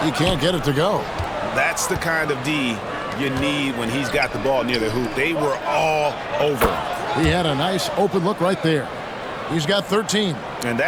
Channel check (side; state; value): both; identical; correlation 1.00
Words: He can't get it to go. That's the kind of D you need when he's got the ball near the hoop. They were all over him. He had a nice open look right there. He's got 13. And